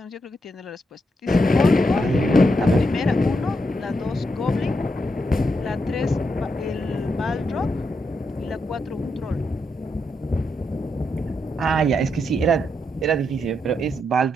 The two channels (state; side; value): normal; both; correlation 0.82